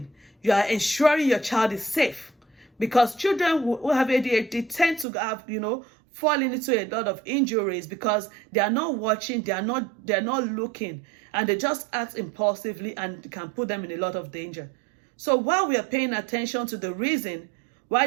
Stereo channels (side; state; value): left; drops out; at 5.1 s